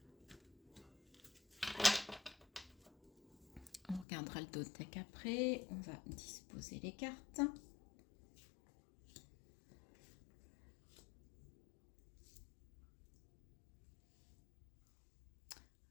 On regardera le deck après, on va disposer les cartes.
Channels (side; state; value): right; drops out; at 4.0 s